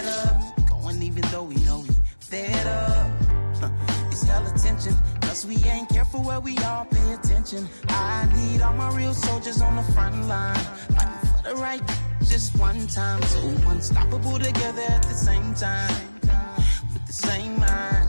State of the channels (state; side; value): inverted; both; correlation -1.00